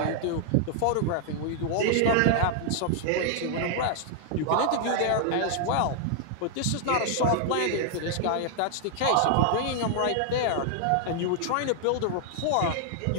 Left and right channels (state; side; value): different; both; correlation 0.00